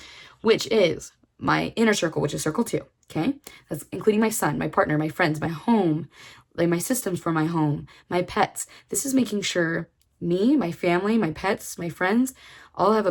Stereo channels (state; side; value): identical; both; correlation 1.00